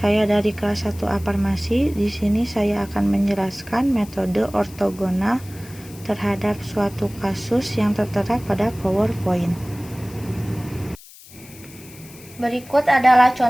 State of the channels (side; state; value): left; noise; hiss, 20 dB below the sound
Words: dari kelas 1A Farmasi. Di sini saya akan menjelaskan metode ortogonal terhadap suatu kasus yang tertera pada PowerPoint. Berikut adalah